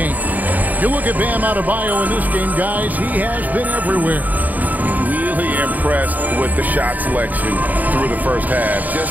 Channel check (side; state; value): left; late; 0.080 ms